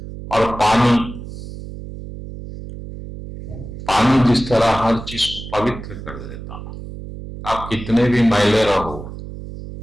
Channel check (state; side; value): noise; right; hum, 11 dB below the sound